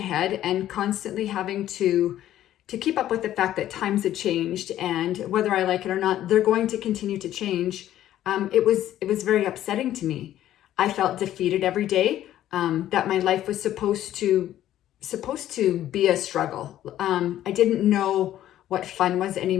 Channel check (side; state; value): right; quieter; 12.6 dB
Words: and constantly having to keep up with the fact that times had changed, and whether I like it or not, they're going to continue to change. It was very upsetting to me. I felt defeated every day, that my life was supposed to be a struggle. I didn't know what fun was